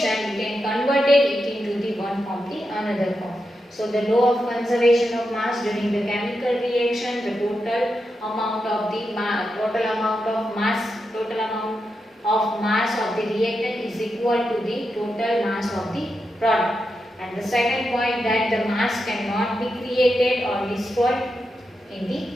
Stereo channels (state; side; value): normal; both; correlation 0.87